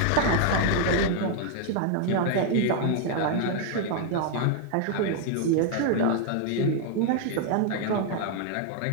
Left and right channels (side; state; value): both; different; correlation 0.00